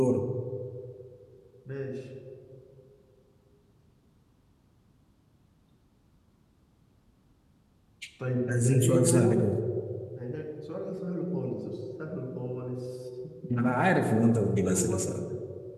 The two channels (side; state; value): both; identical; correlation 1.00